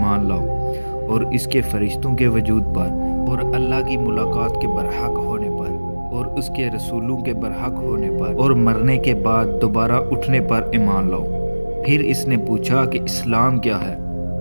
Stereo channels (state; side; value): inverted; both; correlation -1.00